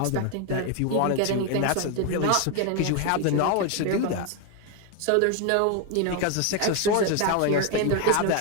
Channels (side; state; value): both; different; correlation 0.01